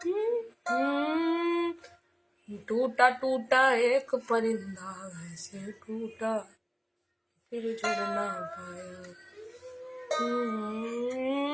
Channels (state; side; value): identical; both; correlation 1.00